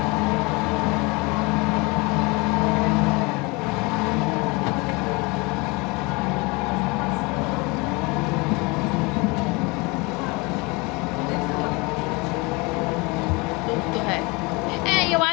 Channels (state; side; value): quieter; right; 26.4 dB